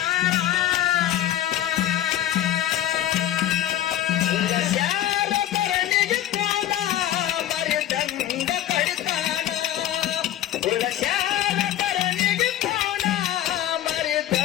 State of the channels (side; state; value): right; quieter; 12.5 dB